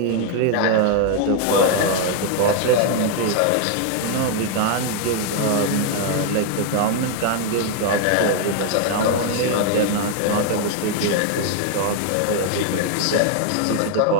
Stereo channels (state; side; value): different; both; correlation 0.00